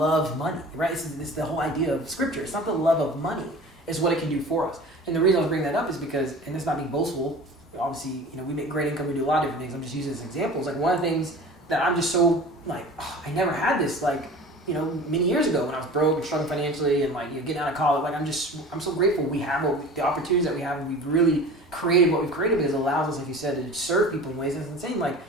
money, right? It's the whole idea of scripture. It's not the love of money. It's what it can do for us. And the reason I was bringing that up is because, and it's not being boastful, obviously, we make great income, we do a lot of different things. I'm just using this as examples. Like one of the things that I'm just so I never had this many years ago when I was broke and struggling financially and getting out of college. I'm so grateful we have the opportunities that we have, and we've really created what we've created because it allows us, like you said, to serve people in ways that's insane. Like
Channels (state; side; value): normal; both; correlation 0.39